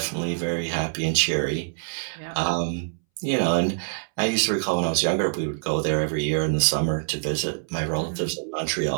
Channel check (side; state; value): left; silent; 62 dB below the other